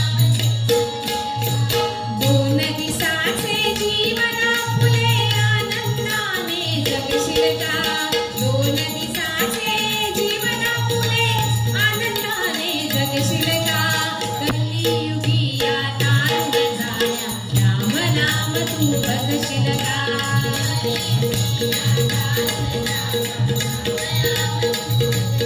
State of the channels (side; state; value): both; identical; correlation 1.00